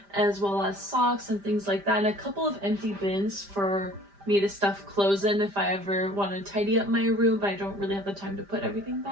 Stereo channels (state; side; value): late; left; 5.0 ms